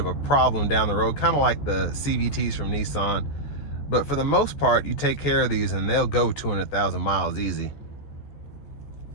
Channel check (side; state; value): right; late; 14 ms